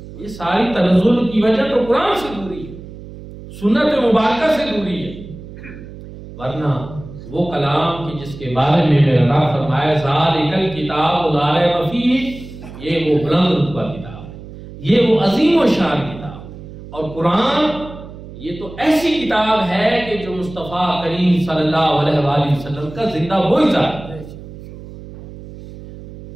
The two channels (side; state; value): right; noise; hum, 15 dB below the sound